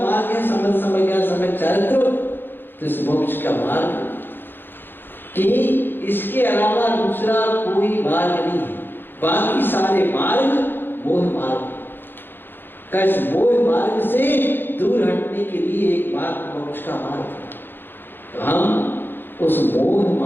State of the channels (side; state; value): right; late; 0.099 ms